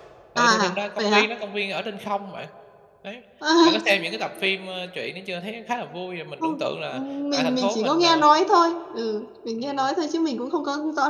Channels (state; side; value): identical; both; correlation 1.00